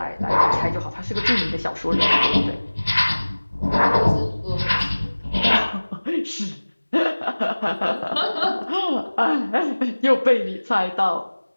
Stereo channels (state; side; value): inverted; both; correlation -1.00